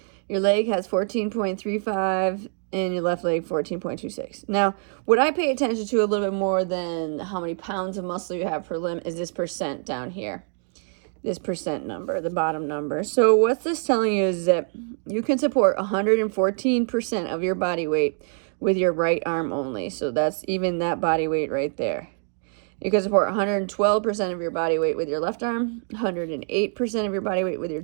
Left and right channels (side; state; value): left; silent; 56 dB below the other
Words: Your leg has 14.35 and your left leg 14.26. Now, what I pay attention to a little bit more than how many pounds of muscle you have per limb is this percent down here. This percent number, the bottom number. So what's this telling you is that you can support 114% of your body weight with your right arm only. So that's even that body weight right there. You can support 112% of your body weight with your left arm, 108% of your body weight with your